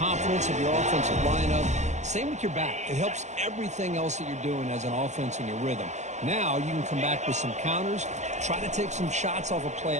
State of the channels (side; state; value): left; late; 0.34 ms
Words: of your offensive lineup. Same with your back. It helps everything else that you're doing as an offense in your rhythm. Now you can come back with some counters, try to take some shots off of play